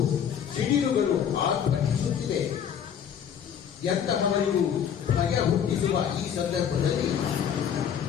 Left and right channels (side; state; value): right; quieter; 8.4 dB